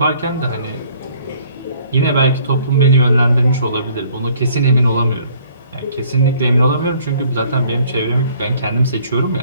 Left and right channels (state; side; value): inverted; both; correlation -0.59